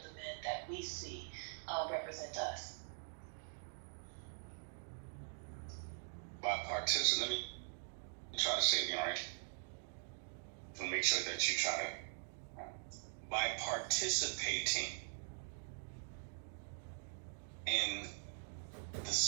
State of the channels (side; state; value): left; silent; digital silence